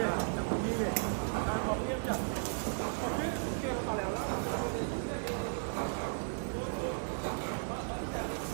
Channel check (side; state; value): left; silent; digital silence